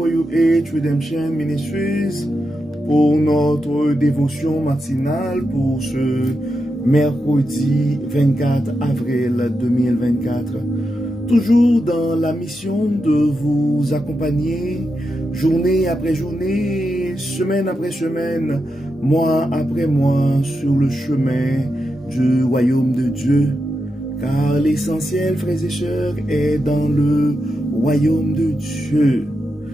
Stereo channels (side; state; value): both; normal; correlation 0.87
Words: Redemption Ministries pour notre dévotion matinale pour ce mercredi 24 avril 2024. Toujours dans la mission de vous accompagner journée après journée, semaine après semaine, mois après mois sur le chemin du royaume de Dieu. Car l'essentiel, frères et sœurs, est dans le royaume de Dieu.